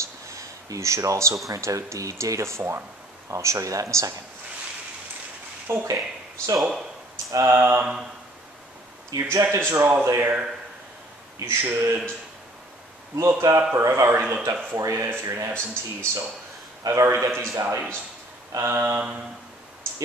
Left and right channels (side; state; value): both; normal; correlation 0.56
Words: You should also print out the data form. I'll show you that in a second. Okay, so your objectives are all there. You should look up, or I've already looked up for you if you're an absentee, so I've already got these values.